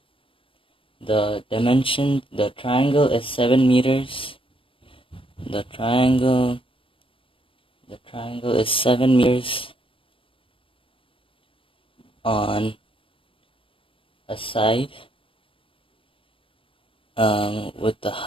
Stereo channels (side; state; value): right; late; 0.25 ms